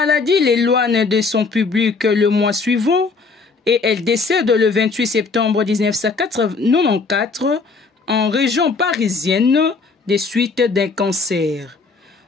l'éloigne de son public le mois suivant et elle décède le 28 septembre 1994 en région parisienne des suites d'un cancer.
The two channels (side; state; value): right; quieter; 4.3 dB